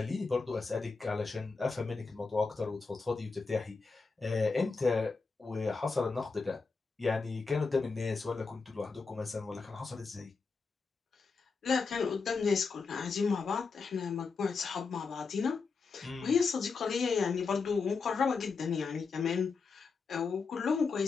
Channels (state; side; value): quieter; right; 4.7 dB